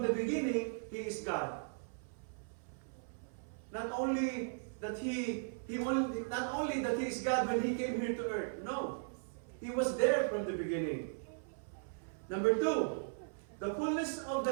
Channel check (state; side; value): silent; left; 53 dB below the other